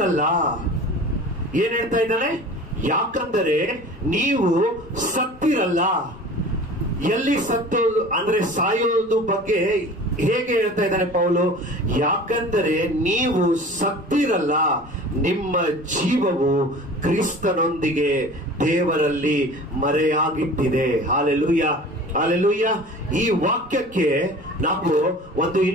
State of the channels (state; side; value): normal; both; correlation 0.41